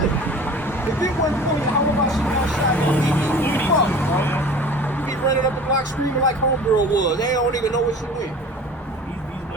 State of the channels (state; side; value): normal; both; correlation 0.42